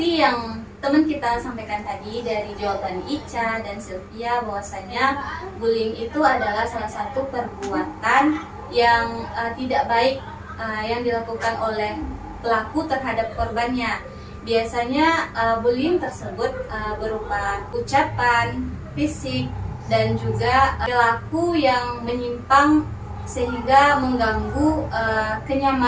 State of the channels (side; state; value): both; identical; correlation 1.00